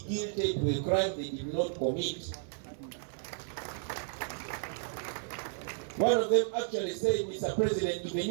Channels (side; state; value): left; silent; digital silence